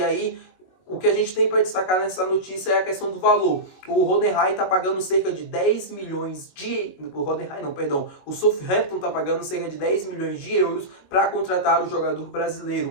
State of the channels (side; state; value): right; late; 21 ms